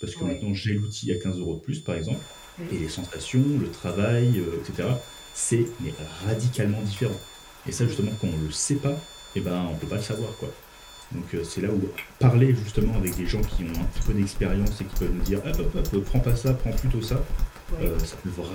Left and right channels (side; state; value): both; identical; correlation 1.00